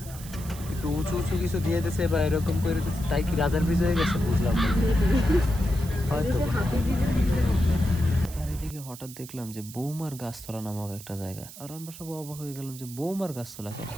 একটু উঁচু উঁচু কিছু দিয়ে দিছে বা এরকম করে দিচ্ছে, তাই কি রাজার ব্রিজ হয়ে গেছে বুঝলাম না হয়তো। আর এদিকে হঠাৎ দেখলাম যে বৌমার গাছতলা নামক একটা জায়গা, আর আমরা সব অবাক হয়ে গেলাম যে বৌমার গাছতলা কেন।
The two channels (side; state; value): right; noise; hiss, 15 dB below the sound